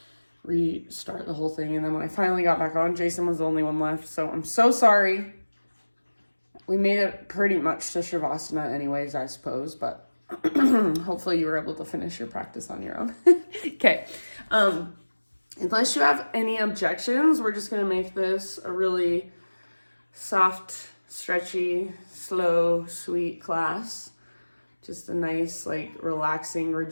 restart the whole thing. And then when I finally got back on, Jason was the only one left. So I'm so sorry. We made it pretty much to Shavasana anyways, I suppose, but hopefully you were able to finish your practice on your own. Okay. Unless you have any objections, we're just going to make this a really soft, stretchy, slow, sweet class. Just a nice, relaxing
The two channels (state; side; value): inverted; both; correlation -1.00